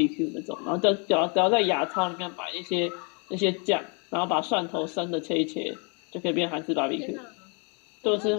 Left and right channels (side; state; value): right; quieter; 35.6 dB